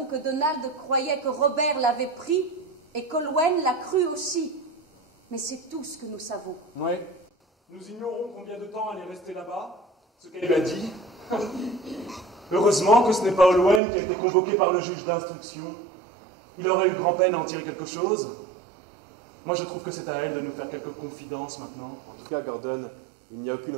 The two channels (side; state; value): left; drops out; at 13.8 s